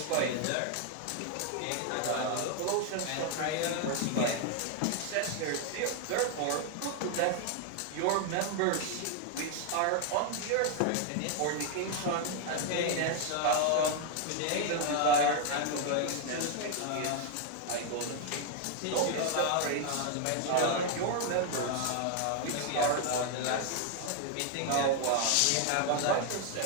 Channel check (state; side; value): different; both; correlation 0.00